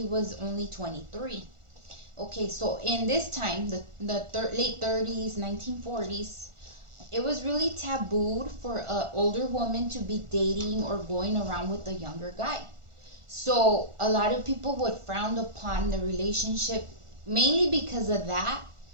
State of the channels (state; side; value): late; left; 1.4 ms